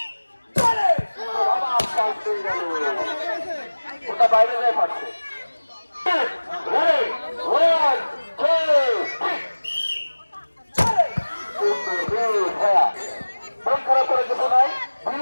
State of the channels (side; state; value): both; inverted; correlation -1.00